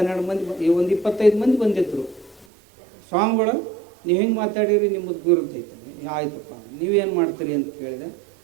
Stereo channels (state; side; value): drops out; left; at 2.5 s